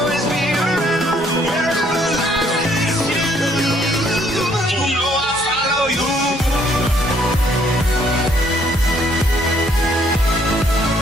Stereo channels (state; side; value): normal; both; correlation 0.66